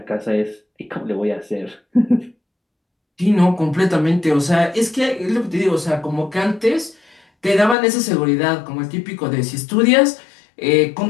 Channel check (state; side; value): drops out; right; at 7.8 s